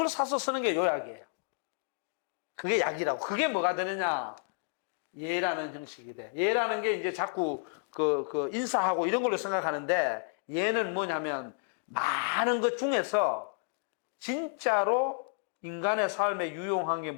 사서 쓰는 게 요약이에요. 그게 약이라고. 그게 뭐가 되느냐? 예라는 형식이 돼. 예라는 게 이제 자꾸 인사하고 이런 걸로 생각하는데 예는 뭐냐면 많은 것 중에서 진짜로 인간의 삶에 유용한 게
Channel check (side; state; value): right; silent; digital silence